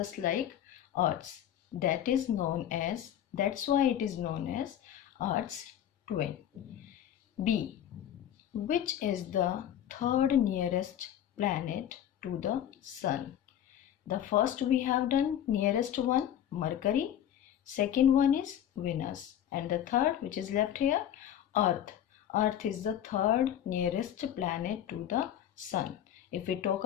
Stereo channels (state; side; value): quieter; right; 10.7 dB